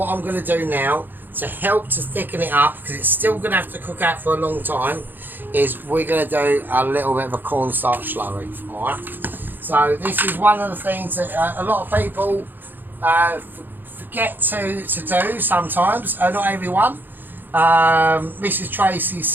I'm going to do now, to help to thicken it up, because it's still going to have to cook out for a long time, is we're going to do a little bit of a cornstarch slurry, alright? So this is one of the things that a lot of people forget to do sometimes, not everyone. Mrs. Tracy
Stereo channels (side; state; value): left; late; 0.091 ms